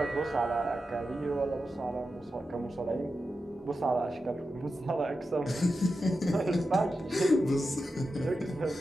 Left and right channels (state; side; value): normal; both; correlation 0.90